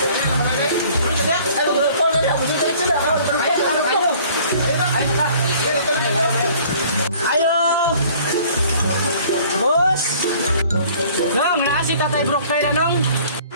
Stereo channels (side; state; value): both; inverted; correlation -0.53